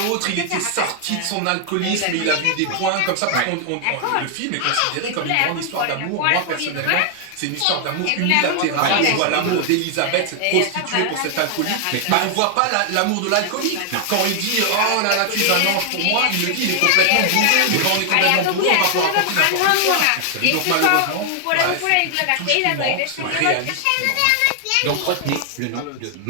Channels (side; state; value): both; different; correlation 0.00